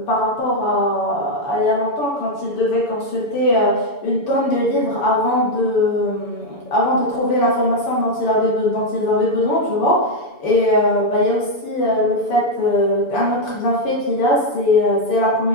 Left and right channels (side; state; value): right; late; 7.0 ms